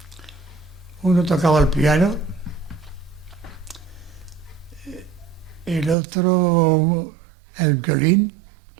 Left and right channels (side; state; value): left; drops out; at 6.0 s